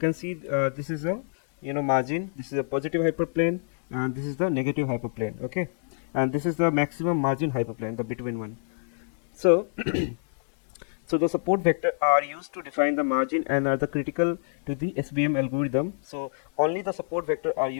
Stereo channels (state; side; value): silent; right; 60 dB below the other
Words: see this is a margin. This is a positive hyperplane, and this is the negative hyperplane. Okay, and this is the maximum margin hyperplane, the between one. So so the support vector are used to define the margin and are the critical to the SVM algorithm. So only the support vector are